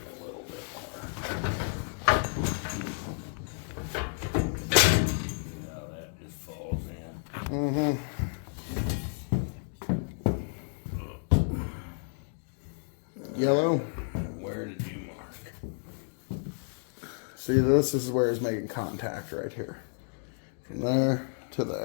a little bit more. Now that just falls in. Mm-hmm. Yellow. Where did you mark? See, this is where it's making contact right here. From there to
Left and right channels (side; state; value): right; silent; 57 dB below the other